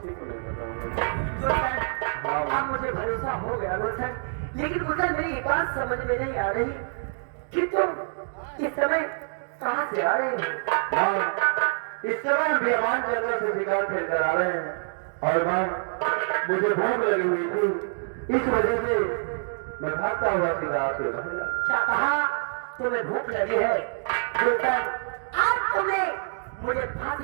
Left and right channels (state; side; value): silent; left; digital silence